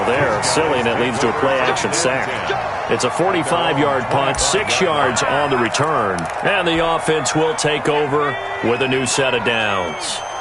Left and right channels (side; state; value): both; identical; correlation 1.00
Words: they're silly, and it leads to a play-action sack. It's a 45-yard punt, 6 yards on the return. And the offense will take over with a new set of downs.